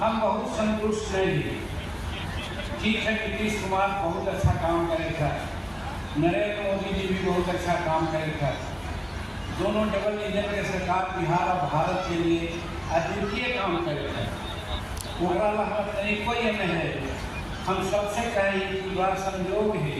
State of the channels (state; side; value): identical; both; correlation 1.00